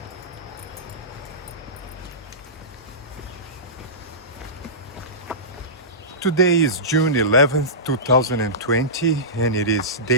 Today is June 11th, 2020, and it is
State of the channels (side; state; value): both; normal; correlation -0.19